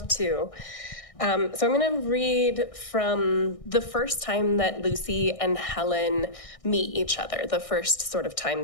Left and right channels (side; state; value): right; late; 1.6 ms